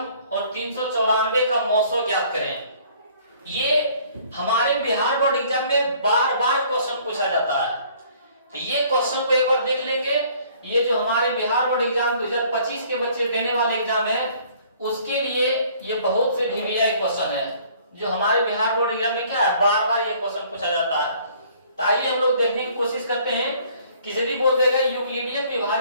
और 394 का मौसो ज्ञात करें। ये हमारे बिहार बोर्ड एग्जाम में बार बार क्वेश्चन पूछा जाता है। तो ये क्वेश्चन को एक बार देख लेंगे। ये जो हमारे बिहार बोर्ड एग्जाम 2025 के बच्चे देने वाले एग्जाम है उसके लिए ये बहुत से वीवीआई क्वेश्चन है जो हमारे बिहार बोर्ड एग्जाम में क्या है, बार बार ये क्वेश्चन पूछा जाता है। तो आइए हम लोग देखने की कोशिश करते हैं कि यदि बोल देगा यूक्लिडियन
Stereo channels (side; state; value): both; inverted; correlation -0.57